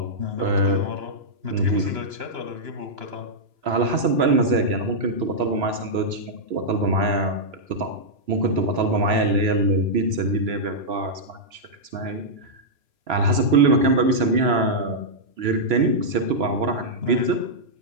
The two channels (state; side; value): late; left; 2.9 ms